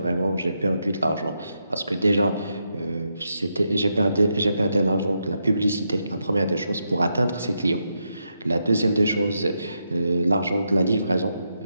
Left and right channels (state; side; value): inverted; both; correlation -0.83